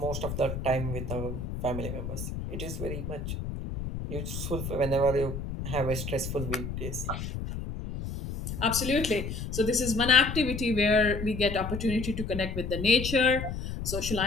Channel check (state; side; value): noise; left; rumble, 6 dB below the sound